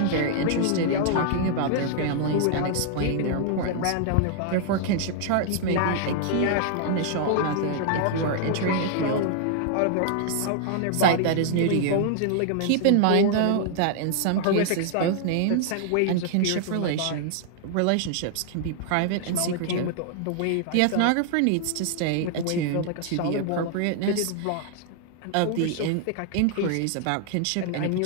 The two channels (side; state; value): both; different; correlation 0.00